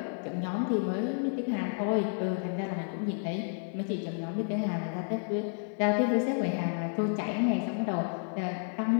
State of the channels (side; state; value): right; silent; 57 dB below the other